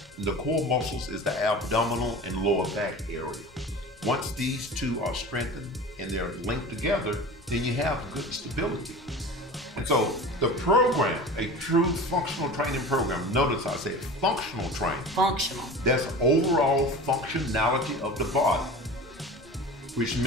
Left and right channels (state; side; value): normal; both; correlation 0.35